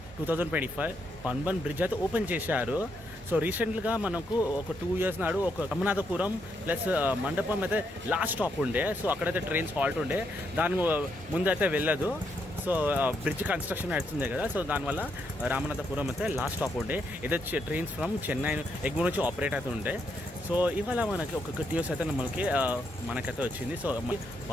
2025 పన్బన్ బ్రిడ్జ్ అయితే ఓపెన్ చేశారు. సో రీసెంట్గా మనకు ఒక 2 years నాడు ఒక రమనాథపురం ప్లస్ మండపం అయితే లాస్ట్ స్టాప్ ఉండే. సో అక్కడైతే ట్రైన్స్ హాల్ట్ ఉండే, దాని ముందు అయితే వెళ్ళదు. సో బ్రిడ్జ్ కన్స్ట్రక్షన్ అవుతుంది కదా, సో దానివల్ల రామనాథపురం అయితే లాస్ట్ స్టాప్ ఉండే. ఏదో ట్రైన్స్ ఫ్రమ్ చెన్నై ఎగ్మూర్ నుంచి ఆపరేట్ అయితే ఉండే. సో ఇవాళ మనకి ఒక గుడ్ న్యూస్ అయితే మనకైతే వచ్చింది. సో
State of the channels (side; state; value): both; normal; correlation 0.78